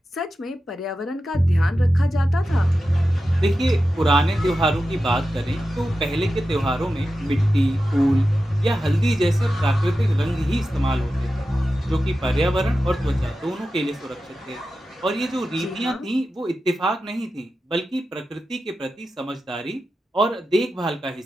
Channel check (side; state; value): both; normal; correlation 0.92